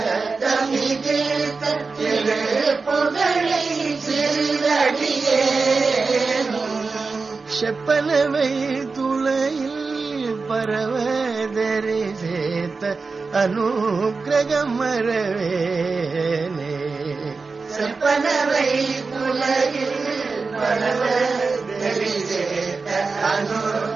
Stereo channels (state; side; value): quieter; left; 4.3 dB